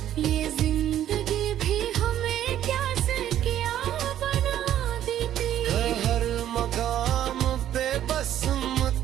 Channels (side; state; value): left; quieter; 11.5 dB